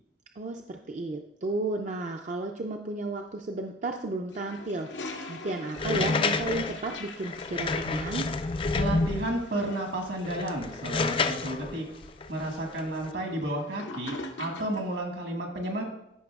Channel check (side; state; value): both; normal; correlation 0.39